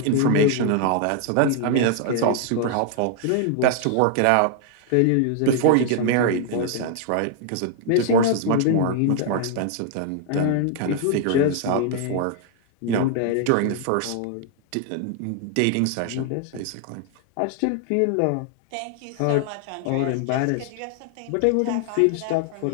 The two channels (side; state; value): both; different; correlation 0.00